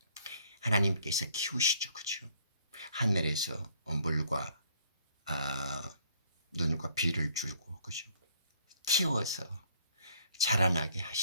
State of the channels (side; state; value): both; inverted; correlation -0.63